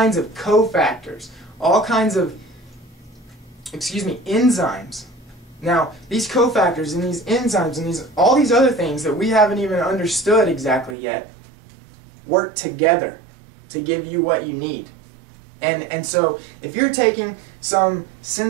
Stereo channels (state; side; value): drops out; left; at 11.0 s